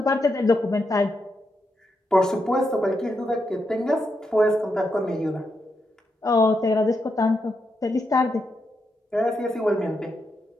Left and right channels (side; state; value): both; normal; correlation 0.83